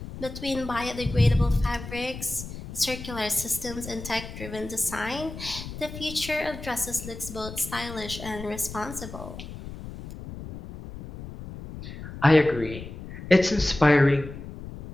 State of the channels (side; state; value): left; noise; rumble, 11 dB below the sound